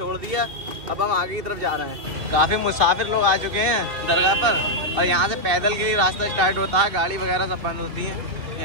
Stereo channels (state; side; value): late; left; 2.6 ms